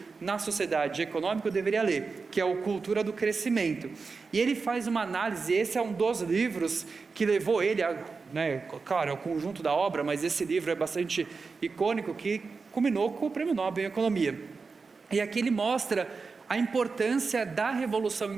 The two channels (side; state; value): left; quieter; 4.6 dB